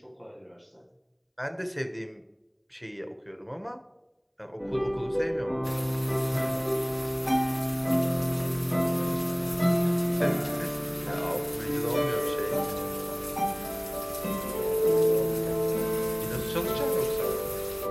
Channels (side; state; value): both; identical; correlation 1.00